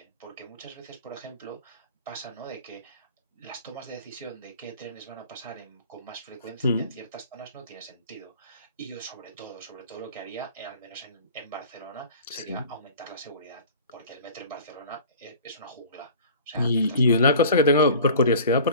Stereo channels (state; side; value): inverted; both; correlation -0.44